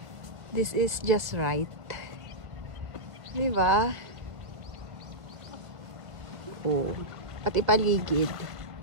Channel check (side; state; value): left; late; 1.6 ms